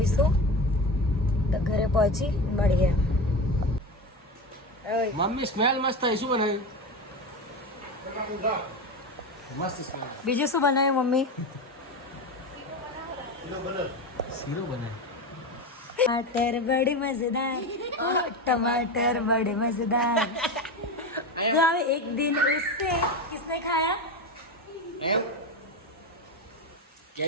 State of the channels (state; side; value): normal; both; correlation 0.21